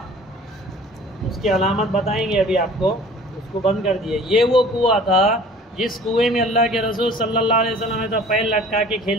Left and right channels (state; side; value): normal; both; correlation 0.47